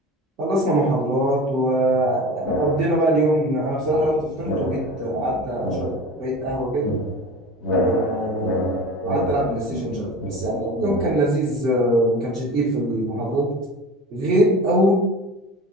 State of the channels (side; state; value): both; normal; correlation 0.35